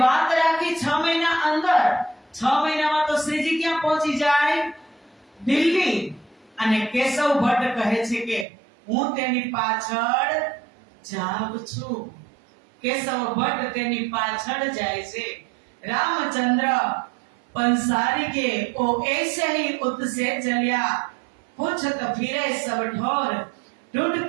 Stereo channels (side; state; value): left; drops out; at 8.5 s